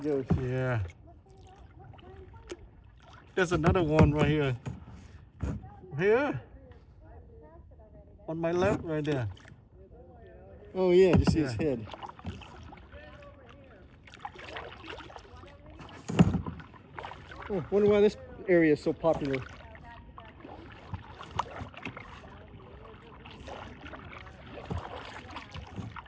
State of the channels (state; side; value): identical; both; correlation 1.00